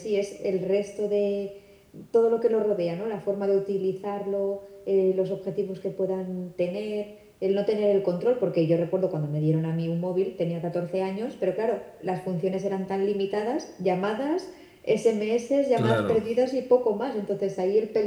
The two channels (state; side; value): identical; both; correlation 1.00